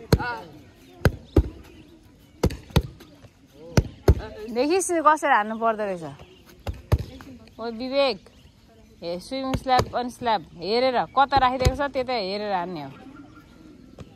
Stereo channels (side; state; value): both; identical; correlation 1.00